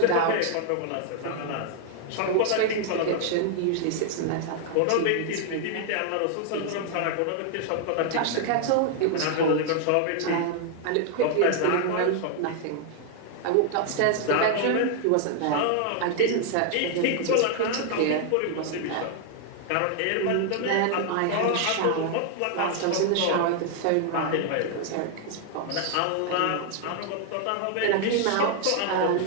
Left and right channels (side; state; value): both; different; correlation 0.00